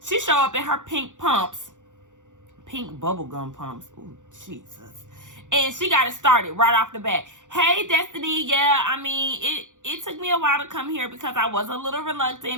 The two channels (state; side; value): late; left; 0.86 ms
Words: she show up in her pink pumps. Pink bubblegum pumps. Ooh, Jesus. And she got it started right off the bat. Hey, Destiny. Yeah, I mean, it took me a while to come here because I was a little